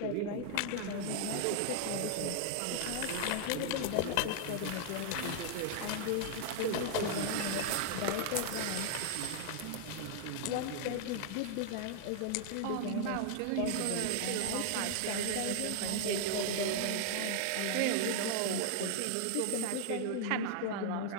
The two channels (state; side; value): different; both; correlation 0.00